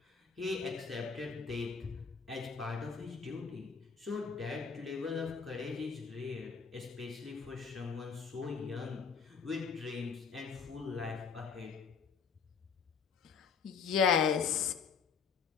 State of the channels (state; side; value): quieter; right; 5.9 dB